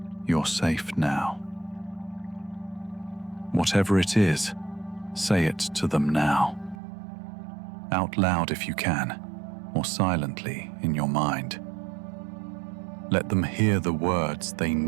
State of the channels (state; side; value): drops out; left; at 6.8 s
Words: you're safe now. Whatever it is, say it to them now. Out loud if you can, or silently in your mind. Let them hear the words they